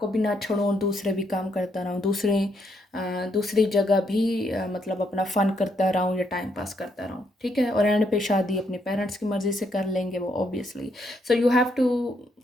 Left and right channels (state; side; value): normal; both; correlation 0.75